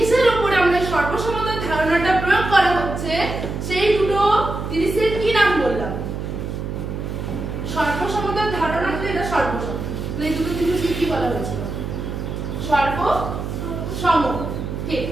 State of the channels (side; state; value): right; noise; hum, 5 dB below the sound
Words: উপরে আমরা সর্বসমতার ধারণাটা প্রয়োগ করা হচ্ছে সেই দুটো জিনিসের কি নাম বললাম? সর্বসমতার ধারণা হচ্ছে এটা সর্বসম। তাহলে এই দুটো জিনিসকে কি বলা হয়েছিল? সর্বসম। ঠিক,